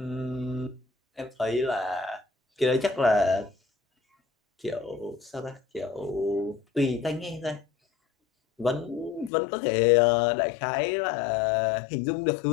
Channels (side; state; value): right; drops out; at 9.3 s